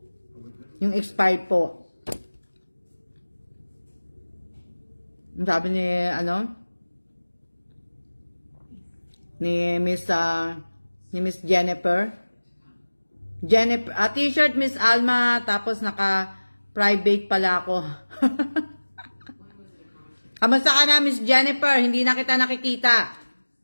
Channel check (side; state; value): both; inverted; correlation -1.00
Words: Yung expired po. Sabi ni Miss Jennifer. T-shirt Miss Alma, tapos naka-private pala ako. Kamusta ka na, Miss Jennifer? Hindi na kita nakikita.